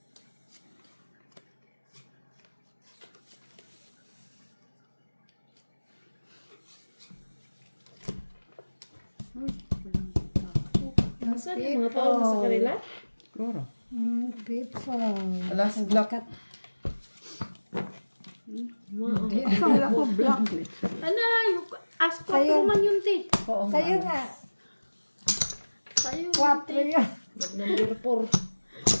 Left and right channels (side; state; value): both; inverted; correlation -1.00